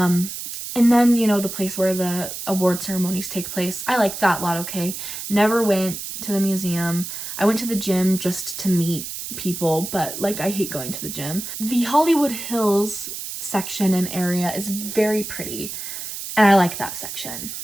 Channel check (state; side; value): noise; right; hiss, 8 dB below the sound